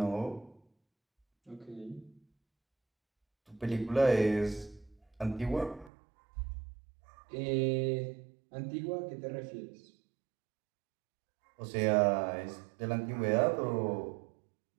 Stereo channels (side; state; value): left; drops out; at 5.9 s